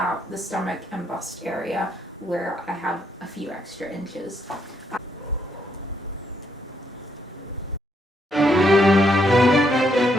the stomach and bust area where I have a few extra inches.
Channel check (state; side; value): normal; both; correlation 0.74